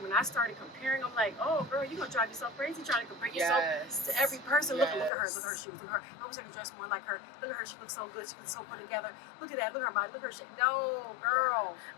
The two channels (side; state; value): right; drops out; at 5.1 s